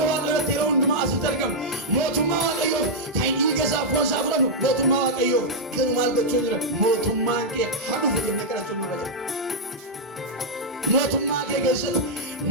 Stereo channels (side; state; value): both; normal; correlation -0.06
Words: waaqayyootti yeroo hundumaa asitti argamu. Mootummaa waaqayyoof kan inni dhiiga isaa foon isaa fudhannu. Mootummaa waaqayyoof garuu maal gochuu jira? Mootummaan kee hadhuuf jennee kadhachuun nurra jira. Mootummaa kee keessatti